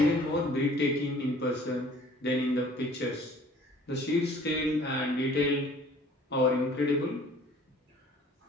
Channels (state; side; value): normal; both; correlation 0.52